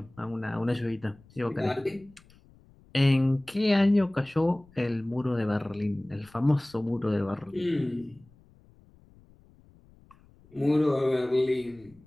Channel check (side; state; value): left; noise; rumble, 27 dB below the sound